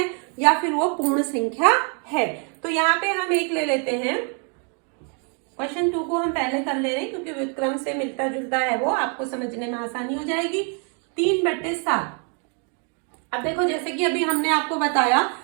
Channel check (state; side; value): quieter; left; 39.6 dB